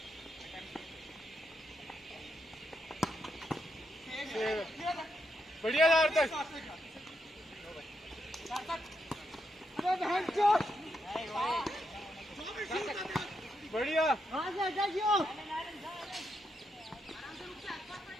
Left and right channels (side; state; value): both; normal; correlation 0.81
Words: बढ़िया यार तक बढ़िया